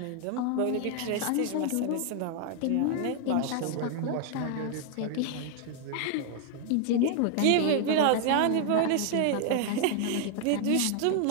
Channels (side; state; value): both; different; correlation 0.00